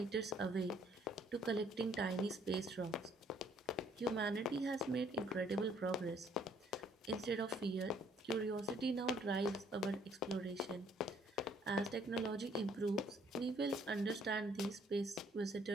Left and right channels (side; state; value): both; normal; correlation 0.63